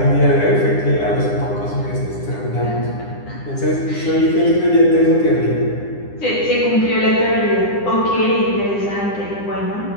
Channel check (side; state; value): right; late; 9.9 ms